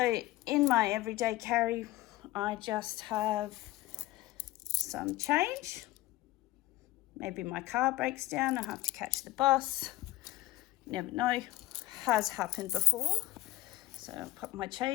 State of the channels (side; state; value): right; quieter; 17.5 dB